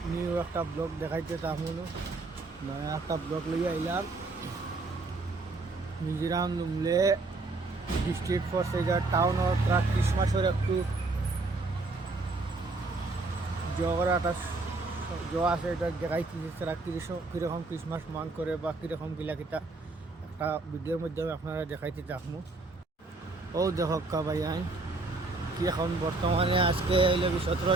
নিউ একটা ব্লগ দেখাইতে তেমন নয়া একটা ব্লগ লিয়ে আইলাম। মিজোরাম লুমলে ডিস্ট্রিক্ট ফরসেজার টাউন ক্রিসমাসের একটু জগরা একটা আছে, এটা দেখাইছি তারা কীরকম ক্রিসমাস মান করে বা কীরকম গিলা একটা ভিডিওর মাধ্যমে আপনারা দেখাইতে থাকবো। ও দেখক ভাই কি এখন বর্তমানে আজকে 17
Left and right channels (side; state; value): left; quieter; 3.4 dB